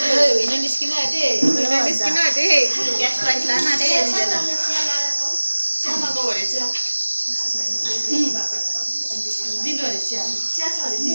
होइन निस्किन आँटे निस्किन आँटे ग्यास प्राइस लान आँटे दिँदैन चियामाको भरे चिया दिनु अरे चिया चिया छ अरे दिनु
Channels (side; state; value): both; inverted; correlation -1.00